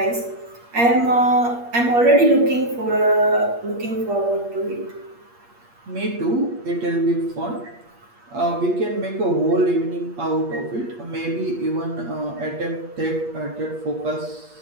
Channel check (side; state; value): left; late; 8.5 ms